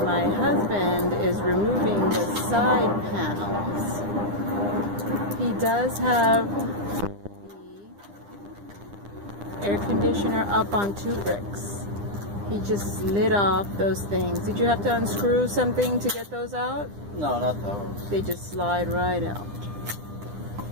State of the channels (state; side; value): late; left; 9.9 ms